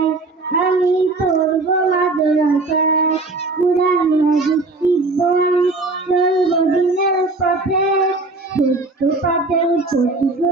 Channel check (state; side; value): quieter; left; 3.3 dB